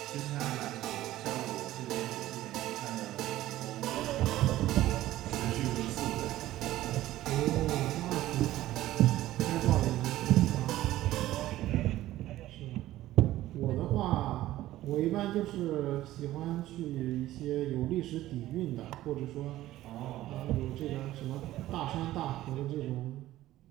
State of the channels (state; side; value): quieter; left; 15.1 dB